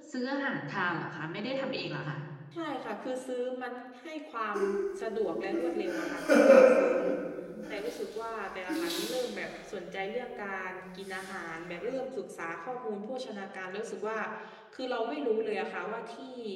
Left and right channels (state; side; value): identical; both; correlation 1.00